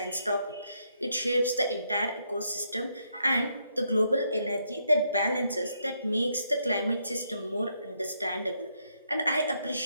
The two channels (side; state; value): both; inverted; correlation -0.76